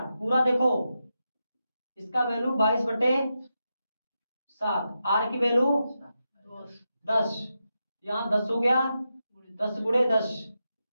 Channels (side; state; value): both; inverted; correlation -0.88